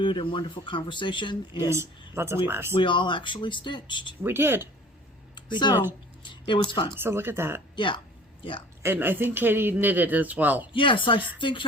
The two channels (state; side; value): normal; both; correlation 0.47